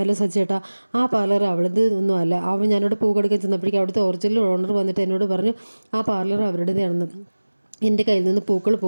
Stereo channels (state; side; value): inverted; both; correlation -1.00